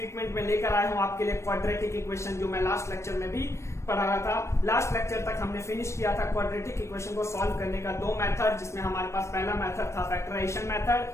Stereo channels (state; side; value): late; right; 0.13 ms